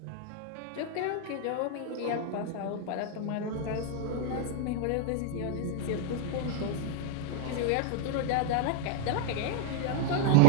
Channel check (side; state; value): both; different; correlation 0.00